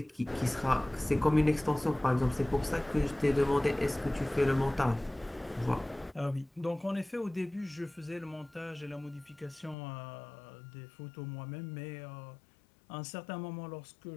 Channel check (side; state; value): right; drops out; at 9.8 s